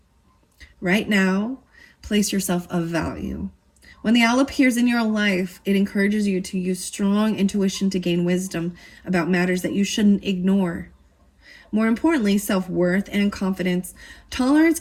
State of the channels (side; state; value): both; identical; correlation 1.00